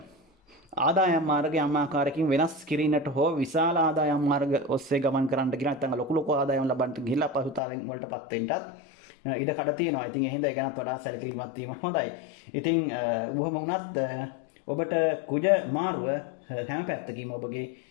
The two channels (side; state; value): right; drops out; at 7.6 s